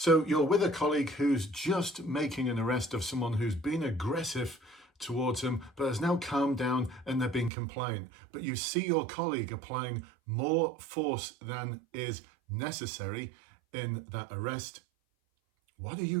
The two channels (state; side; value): drops out; left; at 7.5 s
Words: you're with a colleague who's just making an arrest of someone who's been aggressive towards them, but has now calmed down and they're being compliant. But you see your colleague applying more force than is necessary in that arrest. What are you